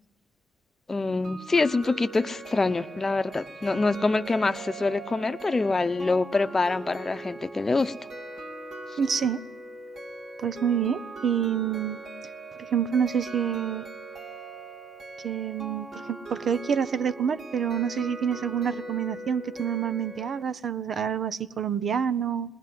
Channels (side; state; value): both; normal; correlation 0.72